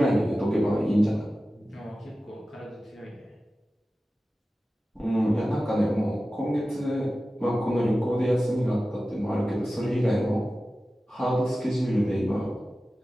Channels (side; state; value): both; normal; correlation 0.95